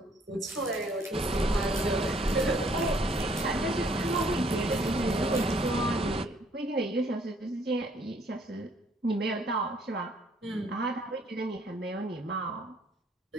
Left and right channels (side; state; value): both; normal; correlation 0.63